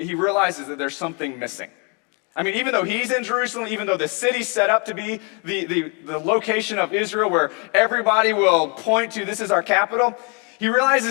realizes that there's something missing. I mean, even though he's in Jerusalem, even though the city's set up to be the location of Israel where everybody will point to this is our capital, he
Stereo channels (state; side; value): quieter; right; 34.5 dB